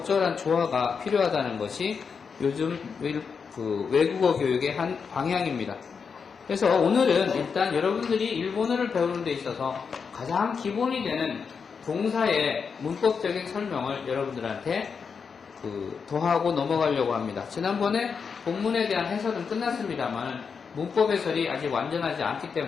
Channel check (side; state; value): right; quieter; 5.9 dB